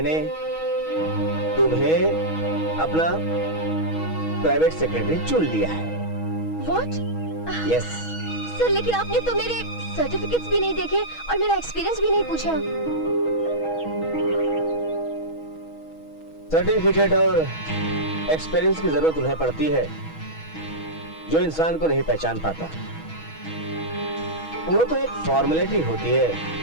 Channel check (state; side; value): late; right; 6.2 ms